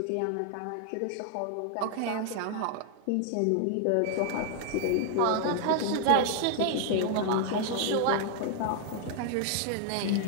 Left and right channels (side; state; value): both; different; correlation 0.00